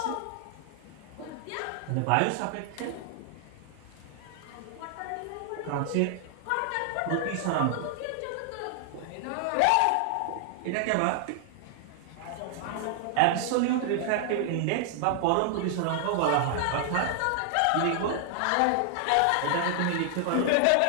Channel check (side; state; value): both; different; correlation 0.00